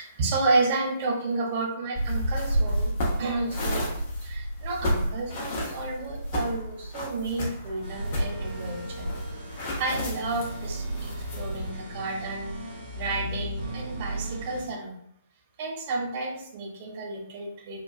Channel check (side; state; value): both; inverted; correlation -0.70